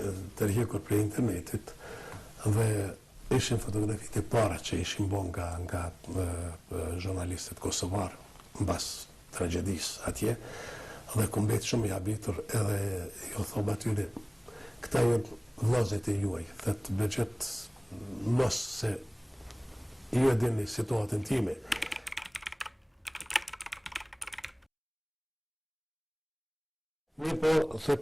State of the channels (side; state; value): both; identical; correlation 1.00